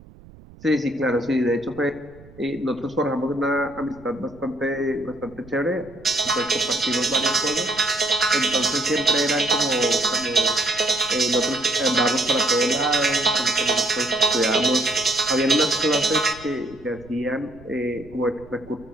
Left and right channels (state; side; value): noise; right; rumble, 22 dB below the sound